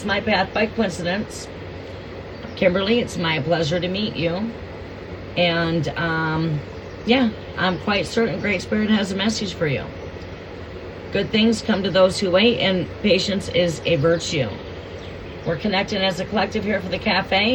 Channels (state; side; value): identical; both; correlation 1.00